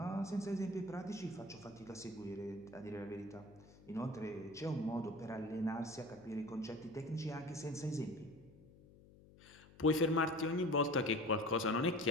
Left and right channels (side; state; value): left; noise; hum, 22 dB below the sound